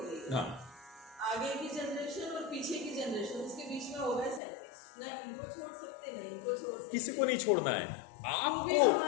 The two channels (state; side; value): drops out; right; at 4.4 s